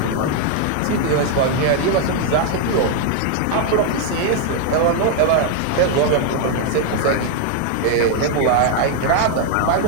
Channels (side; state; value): both; different; correlation 0.00